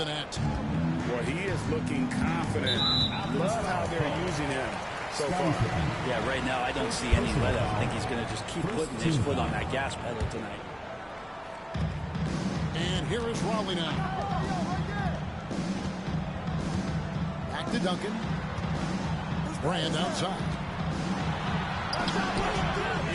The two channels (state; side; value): identical; both; correlation 1.00